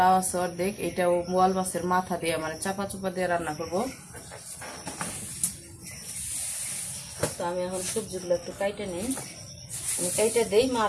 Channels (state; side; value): identical; both; correlation 1.00